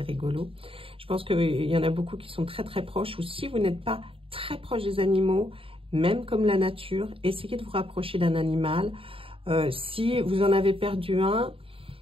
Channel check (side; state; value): left; late; 0.26 ms